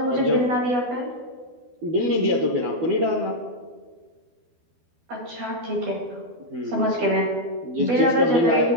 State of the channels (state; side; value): late; left; 12 ms